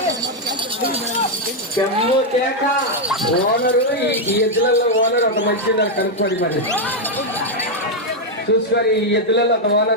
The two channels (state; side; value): normal; both; correlation 0.00